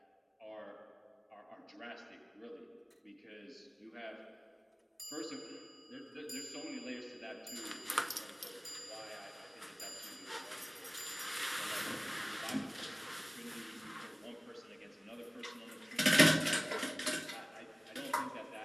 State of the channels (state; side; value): identical; both; correlation 1.00